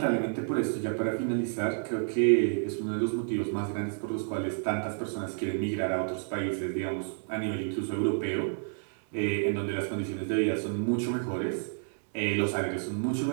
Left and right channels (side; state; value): left; silent; digital silence